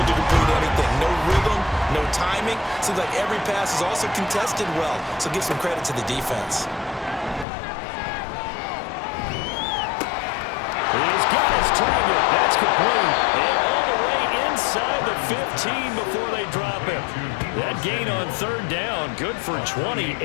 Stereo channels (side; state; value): right; drops out; at 7.5 s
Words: to complete anything. No rhythm, no timing. Seems like every pass is also contested well, so give some credit to the defense. He's got his target. That's complete. And all the way inside the 15 before they drop him. That gain on third down, good for 28.